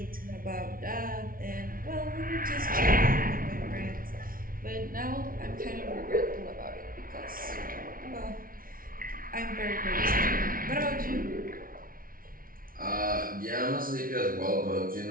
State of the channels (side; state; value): left; late; 0.42 ms